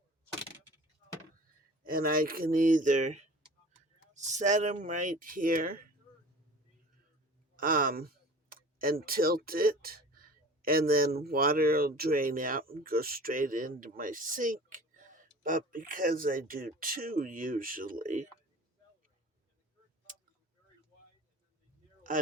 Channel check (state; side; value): normal; both; correlation 0.42